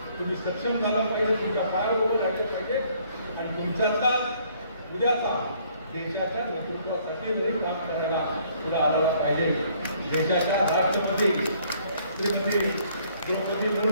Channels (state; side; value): inverted; both; correlation -0.63